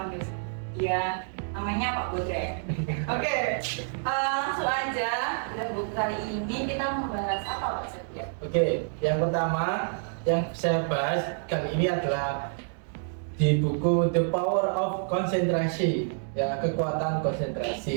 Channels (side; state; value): left; silent; 59 dB below the other